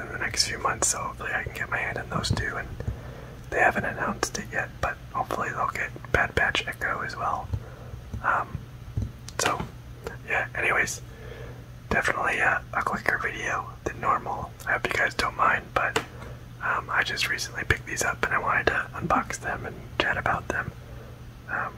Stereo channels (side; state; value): both; identical; correlation 1.00